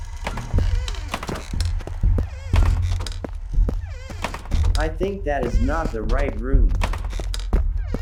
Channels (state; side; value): identical; both; correlation 1.00